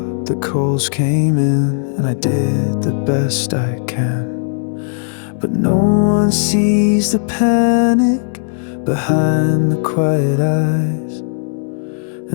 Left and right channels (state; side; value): silent; right; digital silence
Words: the calls came in, and I did the best I can. But no one sees the panic behind the quiet eyes,